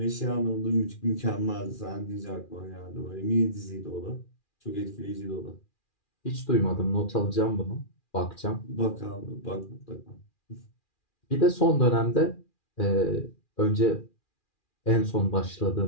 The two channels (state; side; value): late; right; 2.4 ms